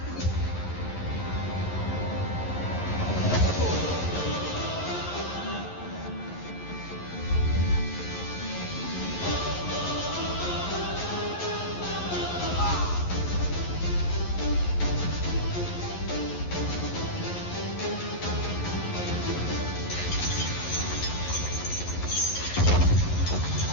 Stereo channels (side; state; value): right; late; 11 ms